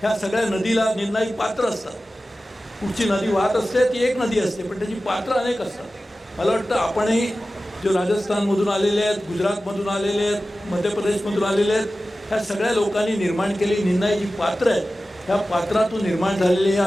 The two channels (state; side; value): normal; both; correlation 0.95